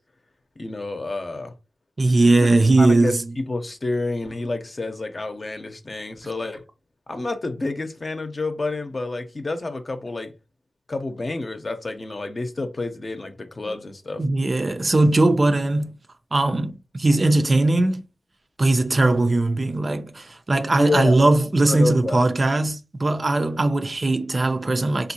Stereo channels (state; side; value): normal; both; correlation 0.96